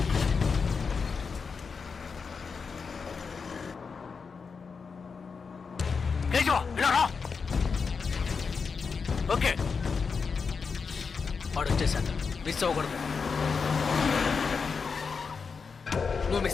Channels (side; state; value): right; quieter; 5.3 dB